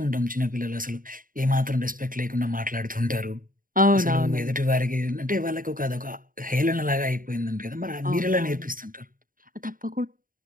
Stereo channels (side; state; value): left; late; 0.40 ms